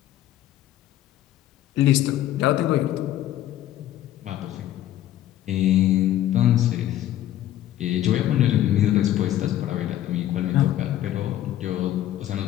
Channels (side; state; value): right; quieter; 12.8 dB